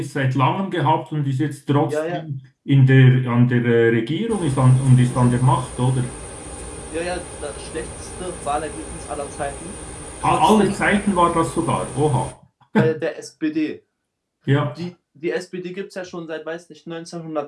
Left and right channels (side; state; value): both; identical; correlation 1.00